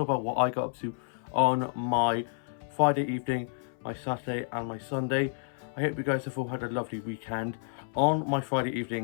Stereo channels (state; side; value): silent; right; 58 dB below the other